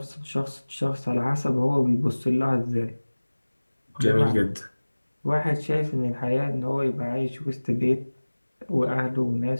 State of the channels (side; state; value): both; inverted; correlation -1.00